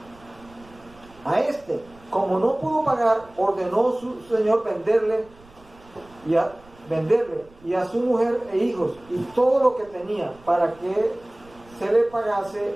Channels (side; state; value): right; noise; rumble, 26 dB below the sound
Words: A este, como no pudo pagar, ordenó su señor venderle y a su mujer e hijos y todo lo que tenía para que se le pagase